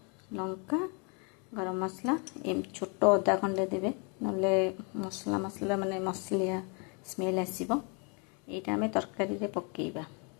लंका गरम मसला एम छोट अदा खंडे देबे नले मसला मसला माने मसलिया स्मेल आसीबो। एटा हमें तरकारी रे पकेइबा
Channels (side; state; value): right; quieter; 35.0 dB